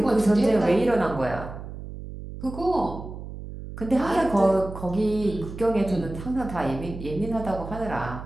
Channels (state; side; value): noise; right; hum, 11 dB below the sound